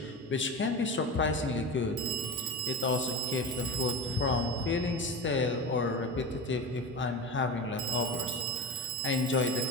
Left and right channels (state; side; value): normal; both; correlation 0.25